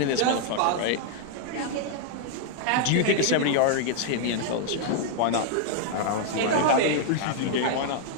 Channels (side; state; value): both; different; correlation 0.00